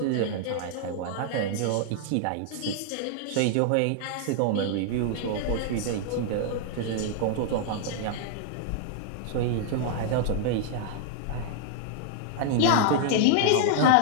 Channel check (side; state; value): both; different; correlation -0.01